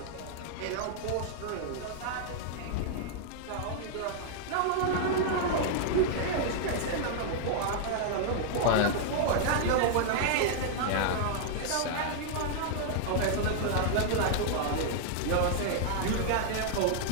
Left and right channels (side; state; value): both; different; correlation -0.01